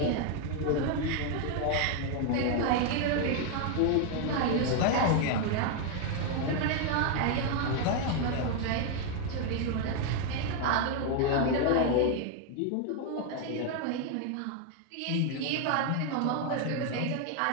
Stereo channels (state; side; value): different; both; correlation 0.00